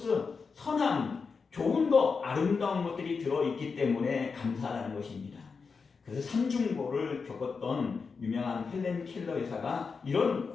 선함, 좋은 것, 아름다운 것들이 들어있기 때문에 감사하다는 것입니다. 그래서 삼중고를 겪었던 유명한 헬렌 켈러 여사가 이런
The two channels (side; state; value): right; quieter; 5.1 dB